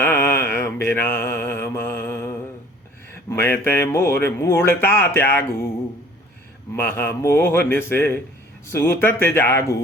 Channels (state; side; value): normal; both; correlation 0.52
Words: विरामा। मैं ते मोर मूढ़ता त्यागू, महामोहन से सूतत